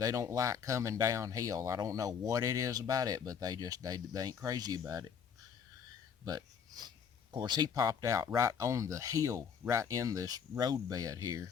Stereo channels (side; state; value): right; quieter; 7.2 dB